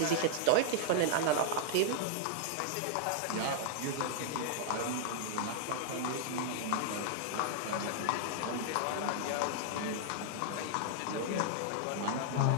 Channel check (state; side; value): different; both; correlation -0.01